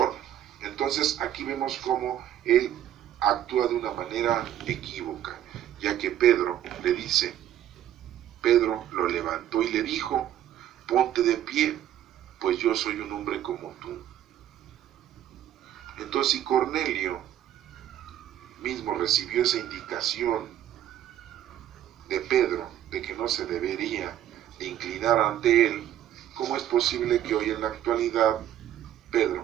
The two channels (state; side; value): quieter; left; 11.5 dB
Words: Entonces aquí vemos cómo él actúa de una manera equívoca, ya que Pedro le dice, Pedro lo levantó y le dijo, ponte de pie, pues yo soy un hombre como tú. Entonces si Cornelio mismo recibió esa indicación de Pedro de que no se debería de inclinar ante él, ¿cómo es posible que hoy en la actualidad